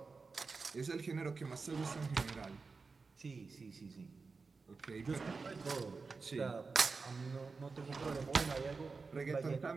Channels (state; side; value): quieter; left; 4.4 dB